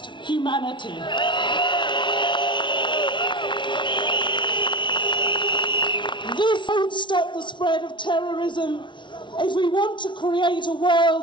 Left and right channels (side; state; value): right; late; 0.24 ms